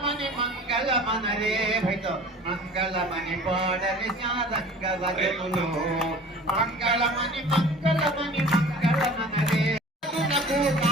మంగళమనరే భైత మంగళమణి పాడలి శారంగవదనులో మంగళమణి మంగళమణి మంగళమనరే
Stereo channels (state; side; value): normal; both; correlation 0.44